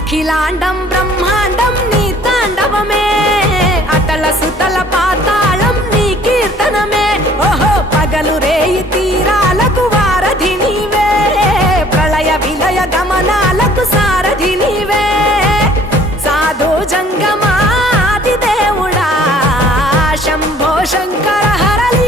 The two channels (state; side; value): normal; both; correlation 0.55